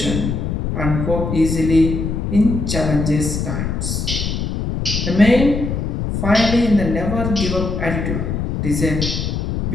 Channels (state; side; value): noise; left; rumble, 2 dB below the sound